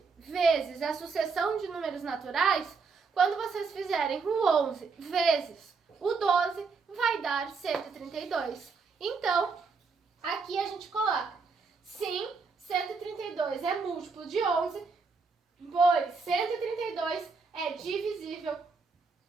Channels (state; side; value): quieter; left; 4.8 dB